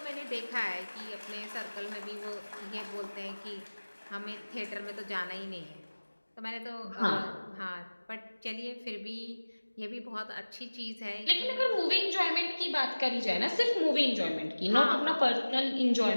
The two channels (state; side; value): inverted; both; correlation -1.00